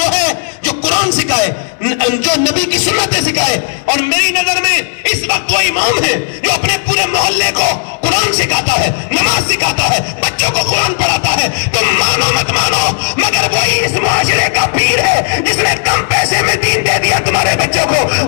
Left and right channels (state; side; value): silent; right; digital silence